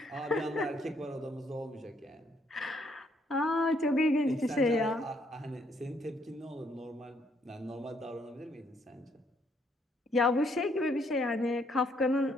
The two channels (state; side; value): normal; both; correlation 0.70